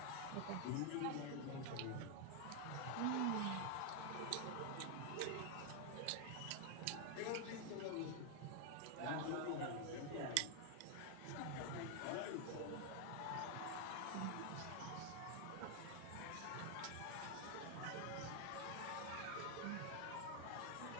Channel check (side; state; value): both; different; correlation 0.00